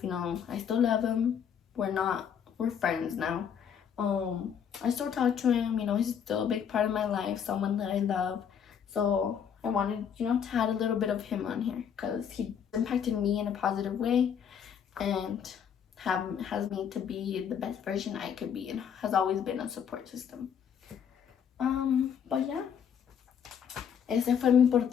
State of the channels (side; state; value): right; quieter; 7.9 dB